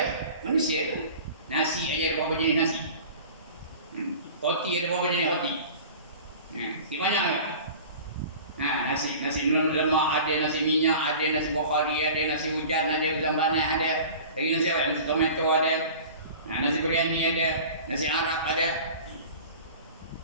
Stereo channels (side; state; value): both; inverted; correlation -0.40